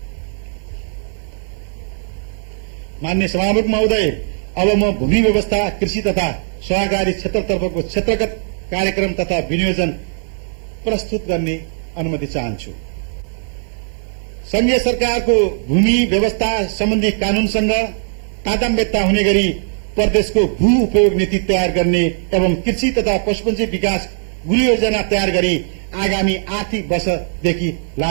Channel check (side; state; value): left; silent; digital silence